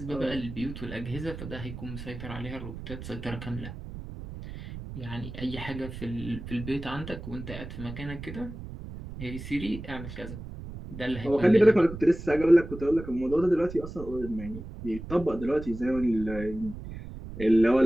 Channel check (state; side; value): noise; right; rumble, 11 dB below the sound